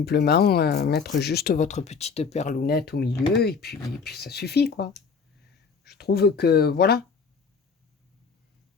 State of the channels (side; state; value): right; quieter; 5.5 dB